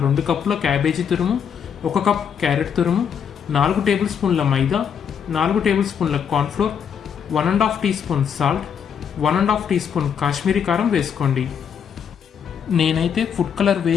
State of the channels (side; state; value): right; quieter; 7.7 dB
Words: 2 కప్పుల క్యాబేజీ తురుము, 1 కప్ క్యారెట్ తురుము, 4 టేబుల్ స్పూన్ల మైదా, 4 టేబుల్ స్పూన్ల cornflour, 1½ teaspoon salt, 1½ teaspoon Kashmiri కారం వేసుకోండి. నేనైతే ఫుడ్ కలర్